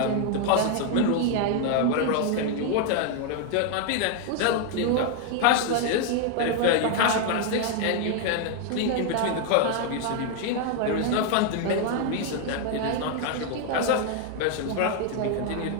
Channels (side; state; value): both; different; correlation 0.00